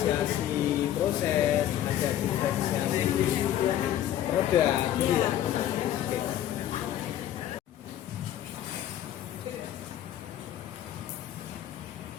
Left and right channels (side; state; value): right; quieter; 11.7 dB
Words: proses, ada diferensiasi produk, gitu ya. Oke.